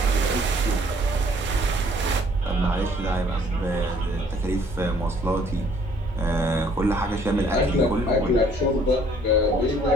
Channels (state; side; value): normal; both; correlation 0.60